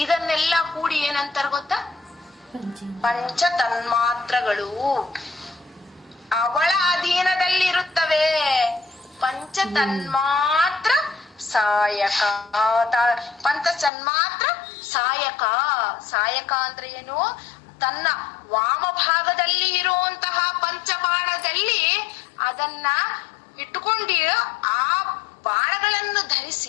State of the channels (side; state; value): right; drops out; at 13.9 s